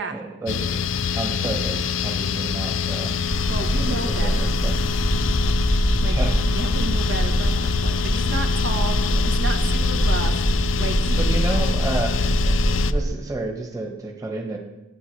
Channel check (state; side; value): normal; both; correlation 0.73